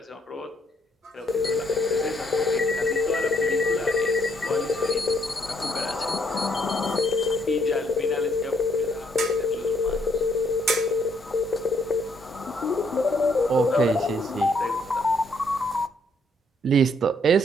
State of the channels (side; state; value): both; normal; correlation 0.70